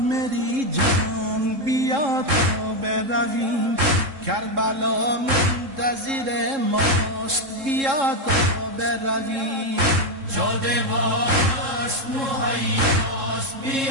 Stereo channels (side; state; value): left; late; 3.7 ms